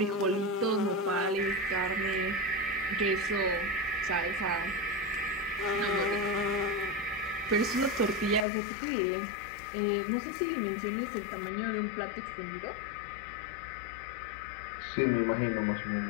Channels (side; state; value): right; drops out; at 8.5 s